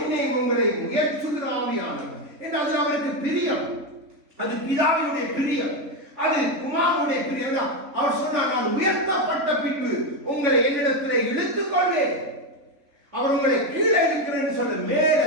உங்களை முயற்சுகிற ஆவியானவர் என்று அதில் அவருக்கு பிரியம். அது பிதாவினுடைய பிரியம், அது குமாரனுடைய பிரியம். அவர் சொன்னார், நான் உயர்த்தப்பட்ட பின்பு உங்களை என்னிடத்திலே இழுத்துக் கொள்வேன். அவர் உங்களை கீழே இருக்கிறேன்னு சொல்ல மேல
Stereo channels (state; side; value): late; left; 3.7 ms